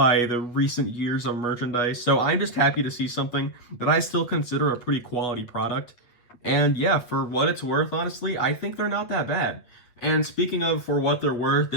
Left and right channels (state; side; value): late; right; 8.2 ms